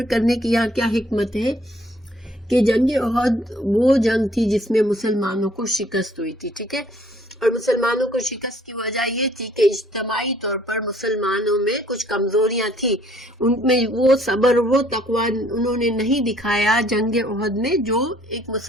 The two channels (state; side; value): normal; both; correlation 0.61